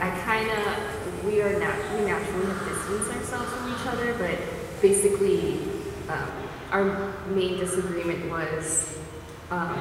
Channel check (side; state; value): both; identical; correlation 1.00